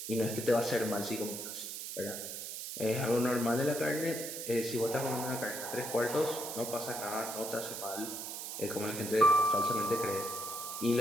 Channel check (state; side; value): noise; right; hiss, 7 dB below the sound